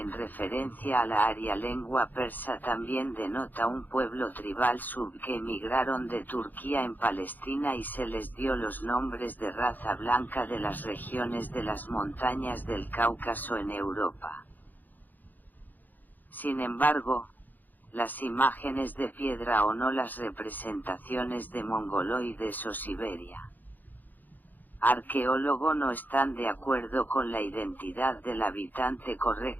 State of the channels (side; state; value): right; late; 0.085 ms